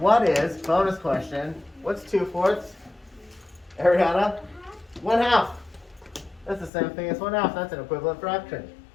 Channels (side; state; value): right; drops out; at 6.7 s